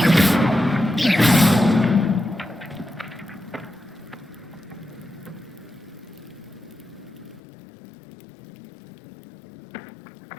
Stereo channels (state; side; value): drops out; right; at 7.4 s